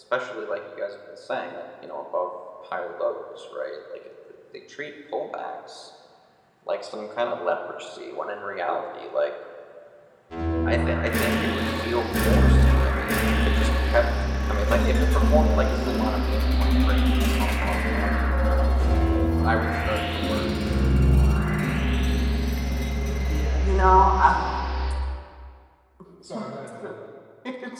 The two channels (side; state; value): both; identical; correlation 1.00